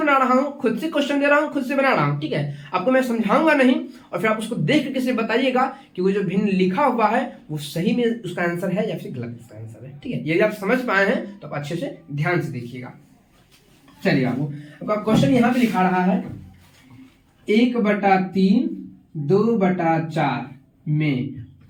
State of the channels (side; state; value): both; identical; correlation 1.00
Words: रहा हूँ, खुद से क्वेश्चन दे रहा हूँ, खुद से बना रहा हूँ। ठीक है, आपको मैं समझाऊंगा नहीं और फिर आप उसको देख करके से बताइएगा कि वो जो भिन्न लिखा हुआ है वो सही में उसका आंसर है या फिर गलत उसका आंसर है। ठीक है, यदि आप समझ पाए हैं तो आप अच्छे से ध्यान से देखिएगा। चलिए आपका क्वेश्चन यहाँ पे लिखा रहा है 1/3 2/4 में